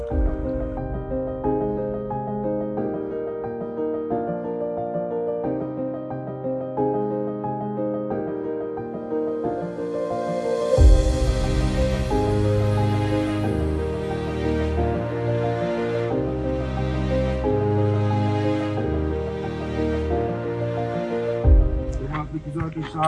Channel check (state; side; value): identical; both; correlation 1.00